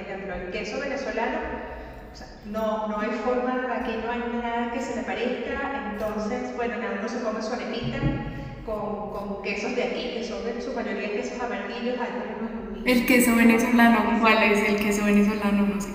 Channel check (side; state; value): both; identical; correlation 1.00